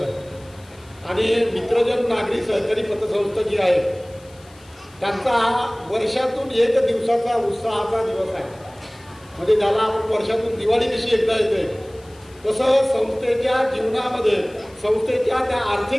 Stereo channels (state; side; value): noise; left; hiss, 27 dB below the sound